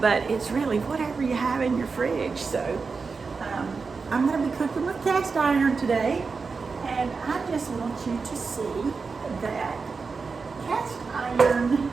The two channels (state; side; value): quieter; left; 4.7 dB